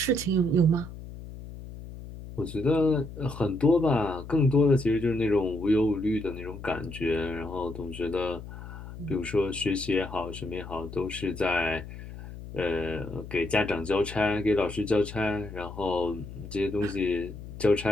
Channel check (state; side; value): noise; left; hum, 12 dB below the sound